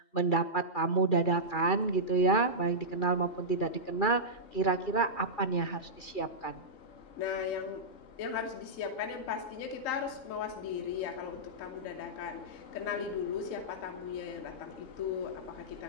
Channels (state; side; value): late; right; 2.4 ms